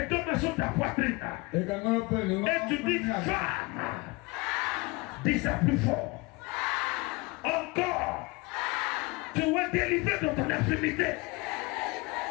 deux mains sur ta poitrine. Et tu dis femme. Dis ça plus fort. Encore. Tu es délivré de ton infirmité.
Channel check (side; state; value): right; quieter; 25.5 dB